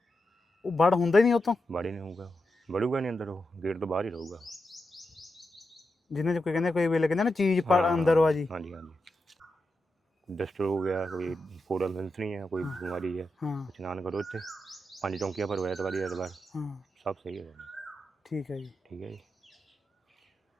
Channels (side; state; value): both; normal; correlation 0.88